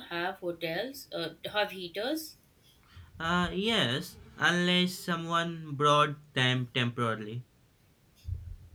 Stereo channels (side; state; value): both; identical; correlation 1.00